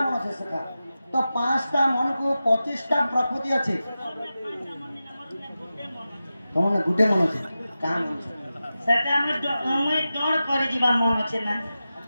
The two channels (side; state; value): both; inverted; correlation -0.93